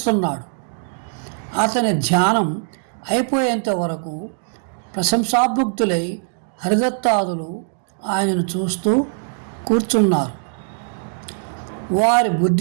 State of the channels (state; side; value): silent; left; digital silence